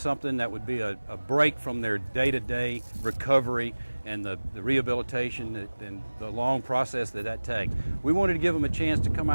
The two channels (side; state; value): both; inverted; correlation -1.00